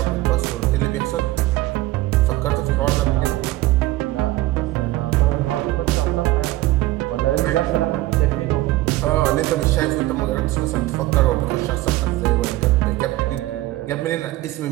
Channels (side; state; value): left; quieter; 17.3 dB